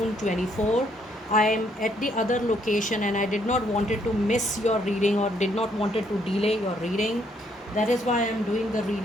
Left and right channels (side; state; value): both; normal; correlation 0.70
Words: 24. I am at the other location and I did not wanted to miss your reading or did not wanted to delay your reading. That is why I am doing the